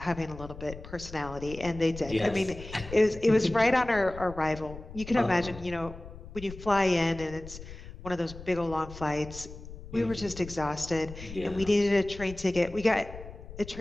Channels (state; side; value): noise; left; rumble, 14 dB below the sound